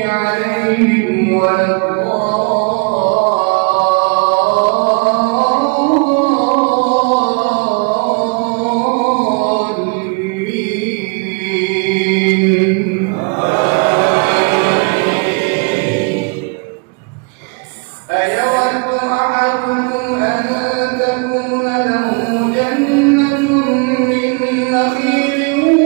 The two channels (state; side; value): quieter; left; 34.6 dB